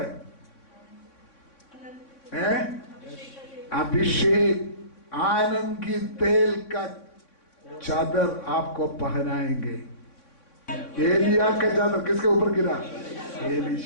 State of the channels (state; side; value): late; right; 3.6 ms